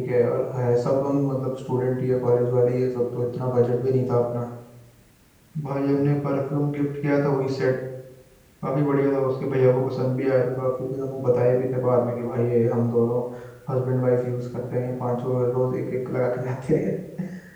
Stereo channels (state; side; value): identical; both; correlation 1.00